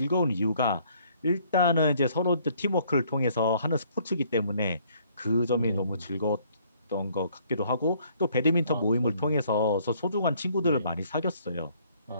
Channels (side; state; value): both; inverted; correlation -0.63